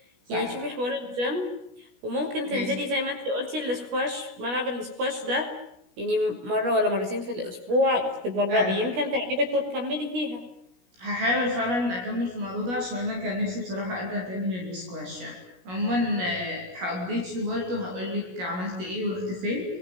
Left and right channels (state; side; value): late; left; 16 ms